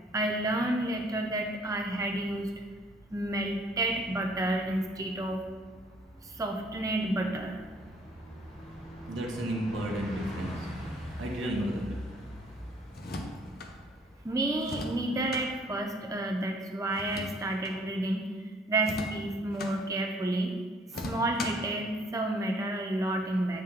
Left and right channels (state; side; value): normal; both; correlation 0.60